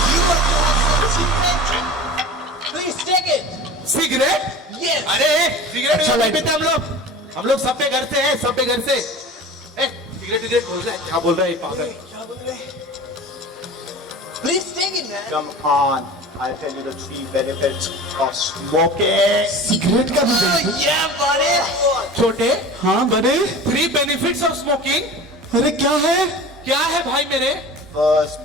You want to have some cigarette? Please take it. Cigarette? Yes. अरे सिगरेट नहीं पीते हम लोग सब पे घर से हैं, सब पे घर से। सिगरेट बोल रहा है, क्या बोल रहा है पागल? Please take it, man. Come on, I'll tell you the 3 benefits of smoking. Cigarette का भी Oh, yeah, buddy. छोटे, हाँ बड़े। 3 benefits of smoking. अरे क्या है? क्या है भाई मेरे? First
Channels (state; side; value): normal; both; correlation 0.37